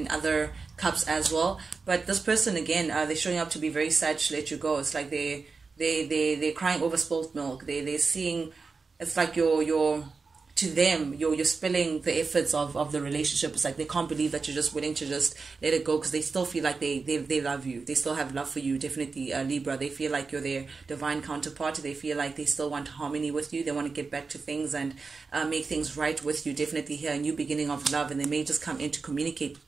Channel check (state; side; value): quieter; left; 4.5 dB